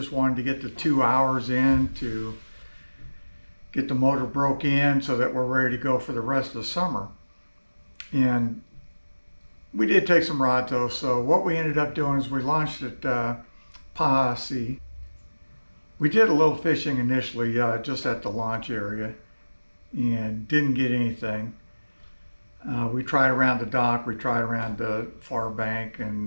wanted to get the 2 hours in to get the motor broke in so that we're ready to go for the rest of the summer. And we did take some rods though. So what we ended up doing is we launched at Posse. We did a little fishing initially just at the launch area and didn't get anything. We tried around the dock, we tried around the far bank,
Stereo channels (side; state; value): both; inverted; correlation -1.00